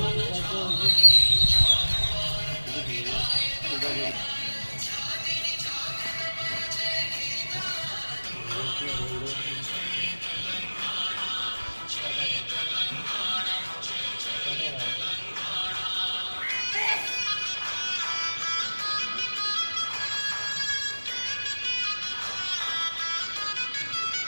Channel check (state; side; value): inverted; both; correlation -1.00